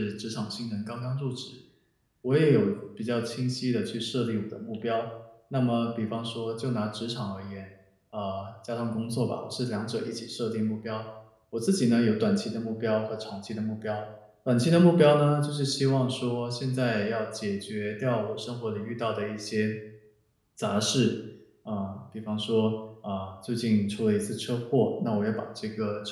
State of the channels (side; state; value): both; identical; correlation 1.00